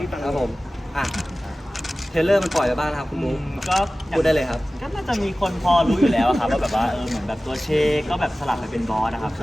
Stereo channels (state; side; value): normal; both; correlation 0.97